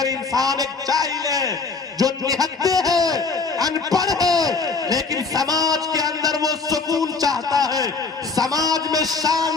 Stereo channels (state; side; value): quieter; right; 4.4 dB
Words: इंसान एक जाहिल है जो निहत्ते है, अनपढ़ है, लेकिन समाज के अंदर वो सुकून चाहता है, समाज में